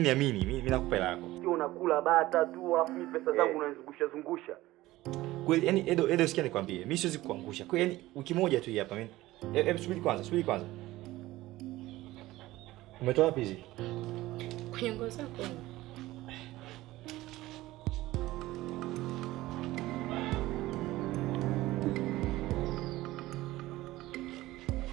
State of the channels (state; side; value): quieter; left; 17.4 dB